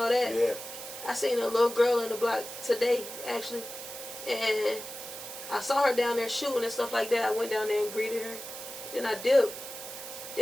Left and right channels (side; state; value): right; noise; hiss, 10 dB below the sound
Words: that. Yeah. I seen a little girl in the block today actually, and I saw her down there shooting and stuff like that. I went down there and greeted her. Then I dipped.